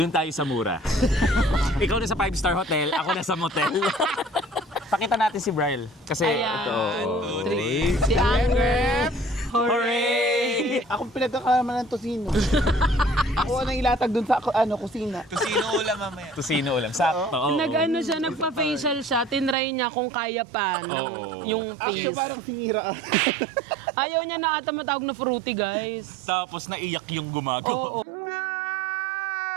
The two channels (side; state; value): left; drops out; at 19.6 s